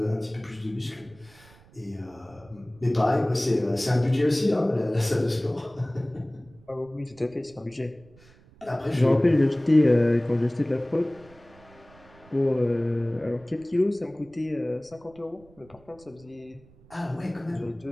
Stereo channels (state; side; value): noise; right; rumble, 26 dB below the sound